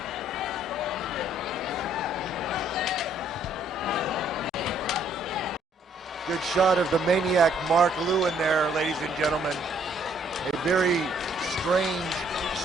Good shot of the Maniac Mark Lewen there, ladies and gentlemen. A very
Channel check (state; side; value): normal; both; correlation 0.65